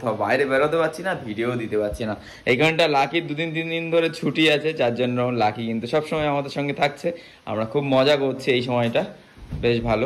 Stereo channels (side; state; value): both; identical; correlation 1.00